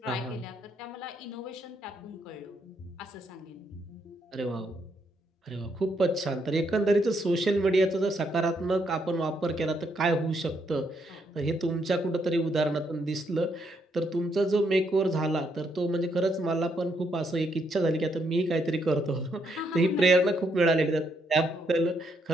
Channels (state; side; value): normal; both; correlation 0.75